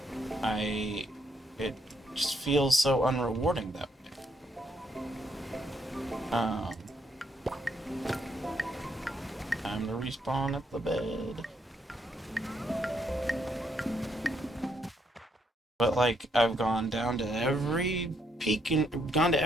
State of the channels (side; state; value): both; normal; correlation 0.74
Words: It just feels so unrewarding that way. Time to respawn at the bed. But like, I've gone down to every peak and gone to